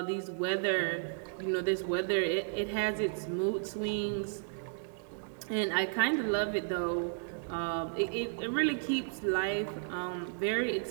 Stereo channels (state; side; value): silent; left; digital silence